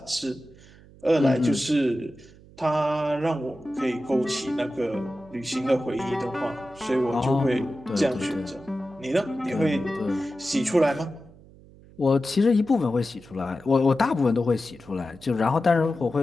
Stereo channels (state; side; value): noise; right; hum, 23 dB below the sound